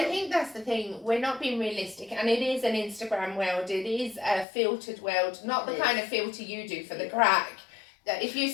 think that's the thing, we're not being realistic, and it is an Instagram world, it is a filtered world, not the kind of filter you do for the crack. If you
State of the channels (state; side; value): drops out; right; at 4.5 s